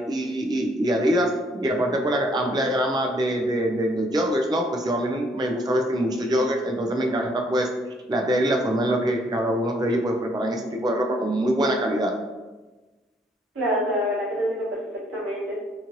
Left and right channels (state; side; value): normal; both; correlation 0.67